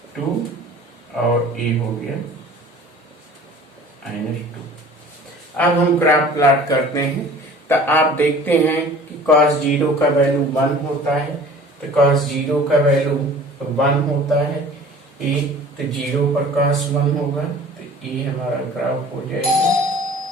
और ये हो गया -2। अब हम ग्राफ प्लॉट करते हैं तो आप देखते हैं कि cos 0 का वैल्यू 1 होता है, तो cos 0 का वैल्यू 1 होता है, ये तो 0 पर cos 1 होगा, तो ये हमारा ग्राफ हो जाएगा।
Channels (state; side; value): normal; both; correlation 0.46